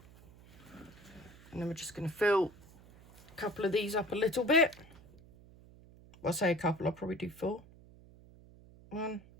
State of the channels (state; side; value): noise; right; hum, 23 dB below the sound